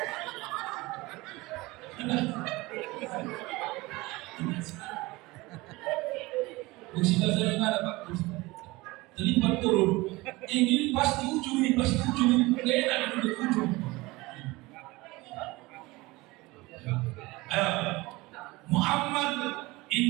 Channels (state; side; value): quieter; left; 21.7 dB